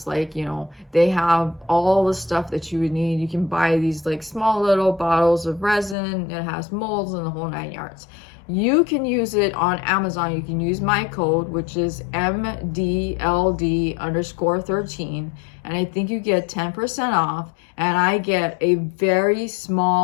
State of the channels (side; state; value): right; drops out; at 6.0 s